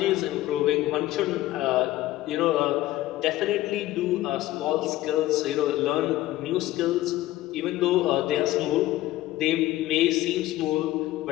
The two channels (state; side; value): quieter; right; 15.9 dB